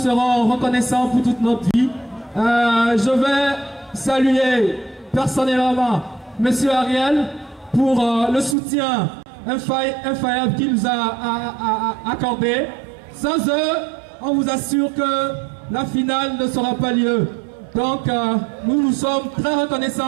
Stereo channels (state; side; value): drops out; left; at 8.6 s